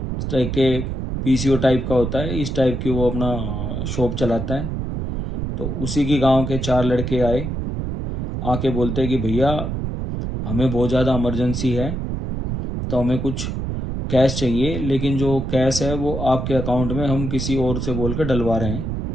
टाइप के पीसीओ टाइप का होता है, इस टाइप की वो अपना शॉप चलाता है। तो उसी की गांव के 4 लड़के आए, आके बोलते हैं कि भैया हमें बहुत ज़्यादा इमरजेंसी है, तो हमें कुछ कैश चाहिए, लेकिन जो कैश है वो आपके अकाउंट में हम किसी और से बोल कर डलवा रहे हैं।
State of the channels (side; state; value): right; noise; rumble, 3 dB below the sound